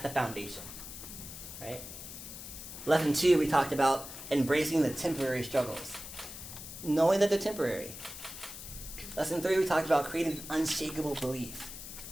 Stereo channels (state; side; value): noise; left; hiss, 11 dB below the sound